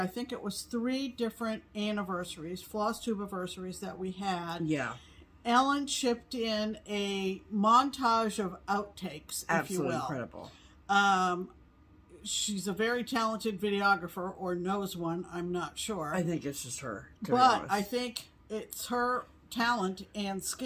think it was 3 different anniversaries, FlossTube anniversaries that we had. Yeah. Ellen shipped in a montage of outtakes, if you will. Absolutely incredible. She's a very talented videographer, or knows one, I'm not sure. I think it's just her, to be But honest. I think it's her talent and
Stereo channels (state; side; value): identical; both; correlation 1.00